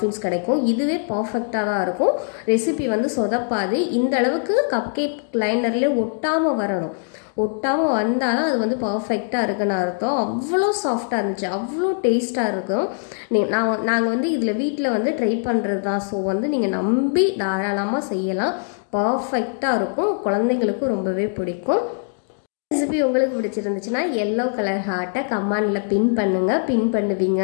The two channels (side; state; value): right; silent; 64 dB below the other